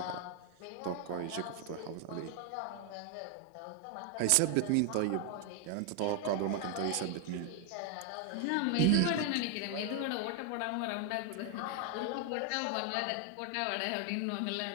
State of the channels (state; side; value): different; both; correlation 0.01